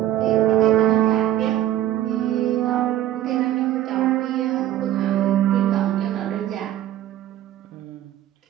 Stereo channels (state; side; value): quieter; left; 12.7 dB